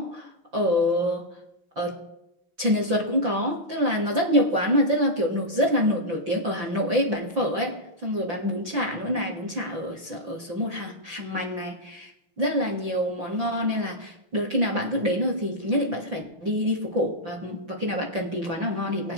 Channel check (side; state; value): left; late; 5.8 ms